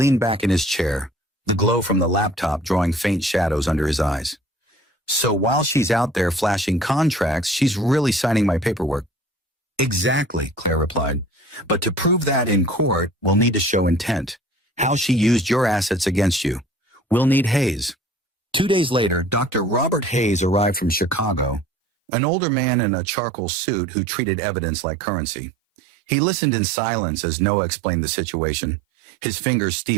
back in his chair, the glow from the laptop drawing faint shadows under his eyes. So while she's out there flashing contracts, she's really signing my paperwork. Exactly, Claire replied. But to prove that in court, we'll need to show intent, how she used your assets against you. We'll need Hayes. 2 days later, Dr. Robert Hayes arrived from Chicago, an older man in a charcoal suit who treated evidence like currency. He listened in silence as Noah explained the situation, his fingers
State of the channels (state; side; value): drops out; left; at 21.7 s